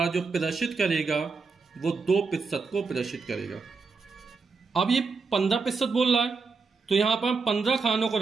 जो प्रदर्शित करेगा वो 2% को प्रदर्शित करेगा। अब ये 15% बोल रहा है, तो यहां पर हम 15 खानों को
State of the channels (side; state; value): left; quieter; 4.7 dB